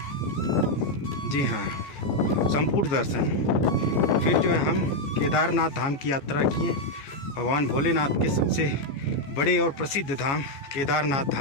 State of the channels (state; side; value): late; right; 14 ms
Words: जी हाँ, संपूर्ण दर्शन। फिर जो है हम केदारनाथ धाम की यात्रा किए। भगवान भोलेनाथ के सबसे बड़े और प्रसिद्ध धाम केदारनाथ